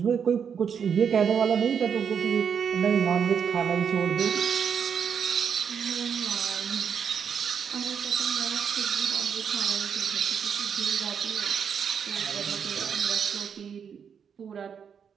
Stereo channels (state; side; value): quieter; left; 7.2 dB